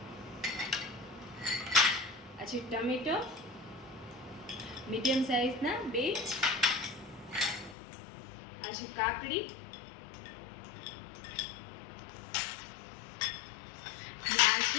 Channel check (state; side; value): drops out; right; at 7.8 s